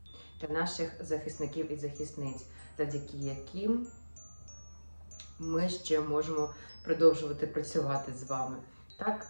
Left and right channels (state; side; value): inverted; both; correlation -1.00